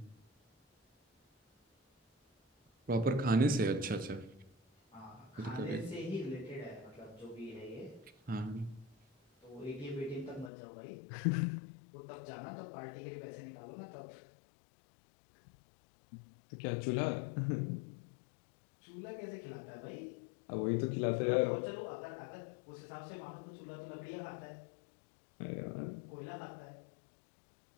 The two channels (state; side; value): drops out; right; at 10.5 s